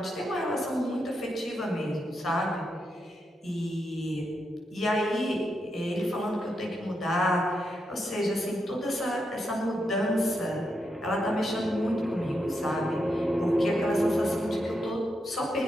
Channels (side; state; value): both; normal; correlation 0.84